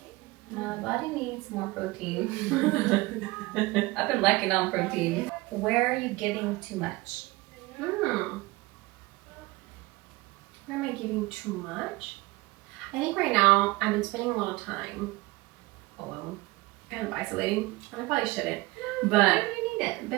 My body needs more protein. I've been lacking on protein. Where are you giving too much? Where am I giving too much? I think right now I've been spending a lot of time alone, kind of isolating, and I probably shouldn't. But you need it.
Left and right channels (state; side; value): quieter; left; 21.4 dB